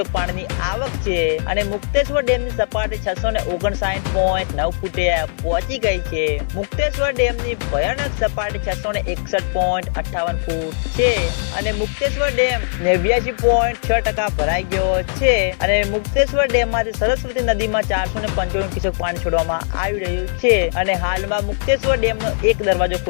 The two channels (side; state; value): right; silent; 57 dB below the other